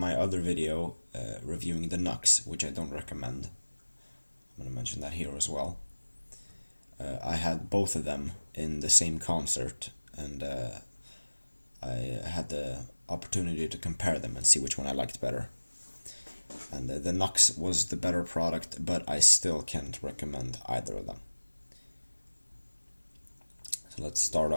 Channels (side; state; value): both; inverted; correlation -1.00